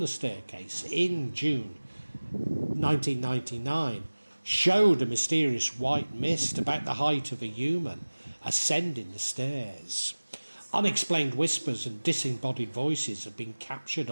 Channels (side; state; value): both; inverted; correlation -1.00